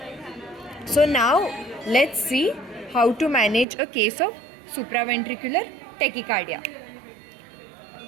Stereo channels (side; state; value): left; drops out; at 3.7 s